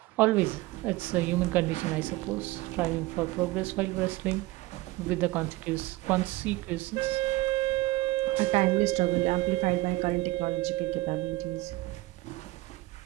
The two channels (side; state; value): left; quieter; 19.5 dB